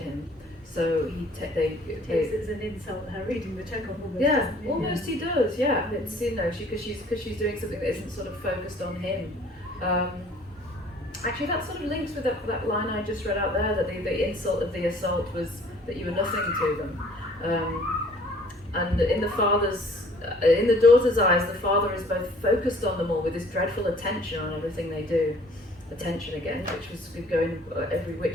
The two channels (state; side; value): normal; both; correlation 0.55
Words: So he takes it as an insult, her reading the Chekhov almost. Yeah, almost he does. Yeah, it's because she's doing something that isn't sort of focused on him. Actually, that sort of links with that line I just read out there, that the insult of the assault was that you were nothing to them. And in the daughter's eyes, the father is both focused on them all with this dreadful attention on everything they do. Attention again, which was going every